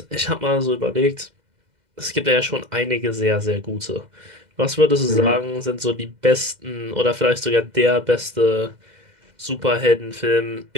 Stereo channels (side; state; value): left; late; 2.1 ms